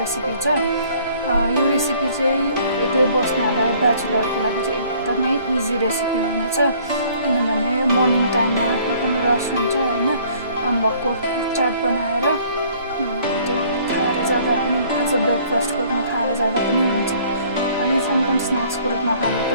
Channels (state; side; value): inverted; both; correlation -0.57